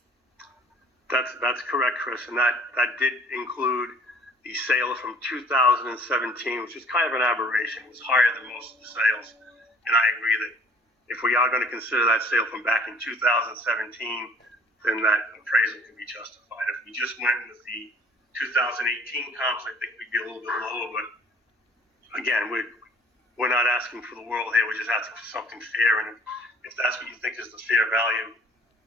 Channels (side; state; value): both; normal; correlation 0.53